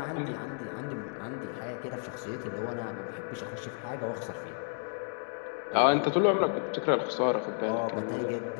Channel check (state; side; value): silent; right; 56 dB below the other